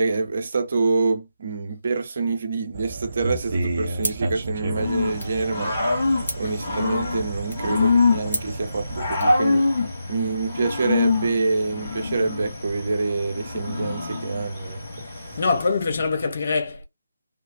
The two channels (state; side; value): inverted; both; correlation -0.84